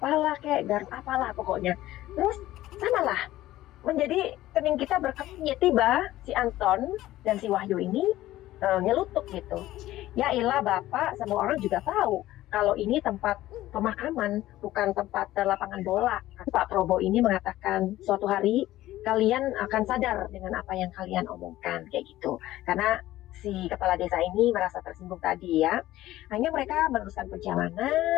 kayak garuk apalah pokoknya. Terus samalah menjadi kening kita berkepnya, tiba si Anton dan si Wahyu ini nyelutuk gitu. Ya ilah Bapak, semua orang juga tahu kalau ini tempat pemakaman, bukan tempat lapangan bola. Pak Probo ini mengatakan suatu hari kalian akan sadar dengan apa yang kalian omongkan kayak gitu. Karena si kepala desa ini merasa tersinggung tadi ya. Hanya mereka meneruskan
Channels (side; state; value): right; quieter; 15.3 dB